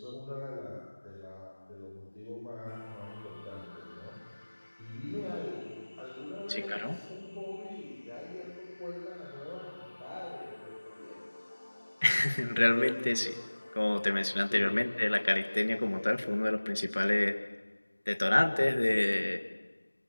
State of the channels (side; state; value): both; inverted; correlation -1.00